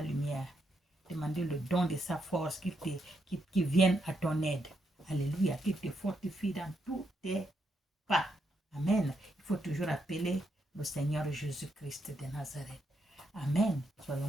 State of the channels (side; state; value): both; normal; correlation 0.79